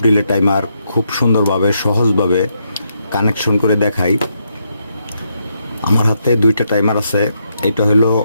ডিলে টাইমার খুব সুন্দরভাবে সহজভাবে কানেকশন করে দেখাই। আমার হাতে দুইটা টাইমার আছে। এটা হলো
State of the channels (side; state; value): both; inverted; correlation -0.79